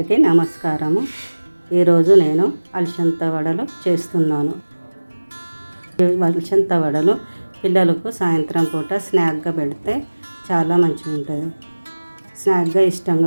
నమస్కారము. ఈరోజు నేను అలసంద వడలు చేస్తున్నాను. ఈ అలసంద వడలు పిల్లలకు సాయంత్రం పూట స్నాక్గా పెడితే చాలా మంచిగా ఉంటుంది. స్నాక్గా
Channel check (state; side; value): inverted; both; correlation -1.00